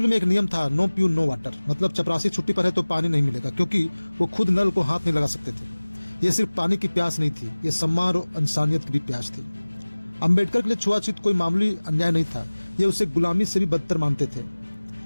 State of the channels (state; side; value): inverted; both; correlation -1.00